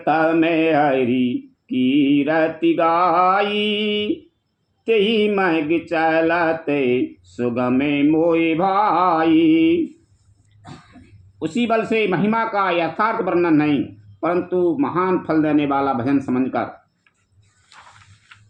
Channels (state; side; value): identical; both; correlation 1.00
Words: हरि कीरति गाई, तेहि मग चलते सुगमे मोहि भाई। उसी बल से महिमा का यथार्थ वर्णन नहीं, परंतु महान फल देने वाला भजन समझकर